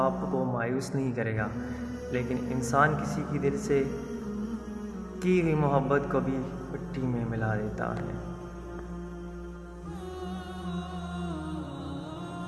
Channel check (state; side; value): identical; both; correlation 1.00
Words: کو مایوس نہیں کرے گا، لیکن انسان کسی کی دل سے کی ہوئی محبت کو بھی مٹی میں ملا دیتا ہے۔